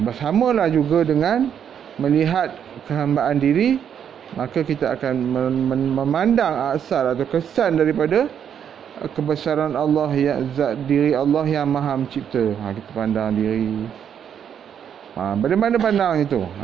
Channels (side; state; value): left; quieter; 8.5 dB